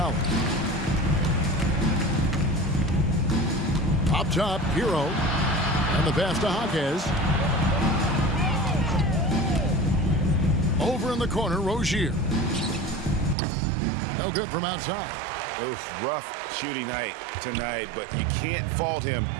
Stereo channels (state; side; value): drops out; left; at 13.4 s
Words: Up top, Hero. And the pass to Jaquez. Over in the corner, Rozier. No good from outside. Oof, rough shooting night tonight, but you can't fault him